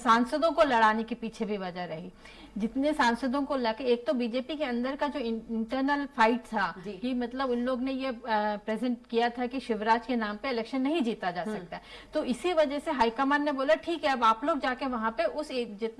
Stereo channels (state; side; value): identical; both; correlation 1.00